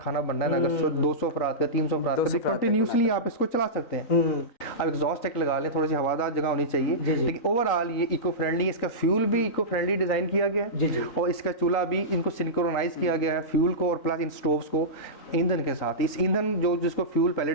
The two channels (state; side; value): late; right; 3.9 ms